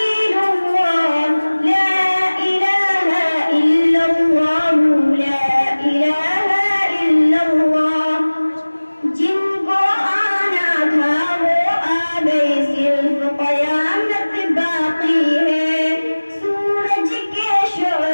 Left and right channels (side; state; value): both; inverted; correlation -1.00